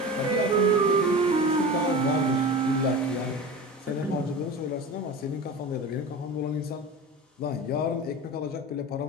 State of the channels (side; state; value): both; normal; correlation 0.31